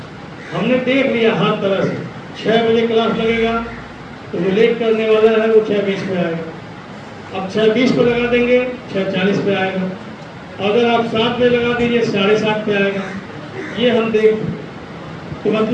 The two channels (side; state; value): both; identical; correlation 1.00